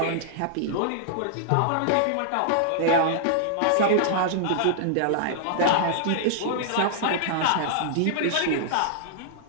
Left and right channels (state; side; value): different; both; correlation -0.01